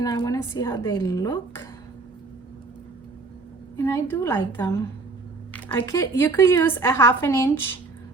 I wanna see how they look. And I do like them. You could use a 1/2 inch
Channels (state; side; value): quieter; left; 3.6 dB